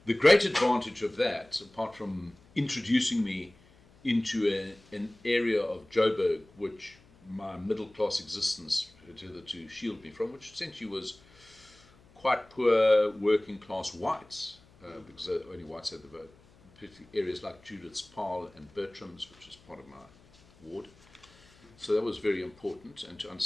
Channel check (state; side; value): noise; left; hum, 27 dB below the sound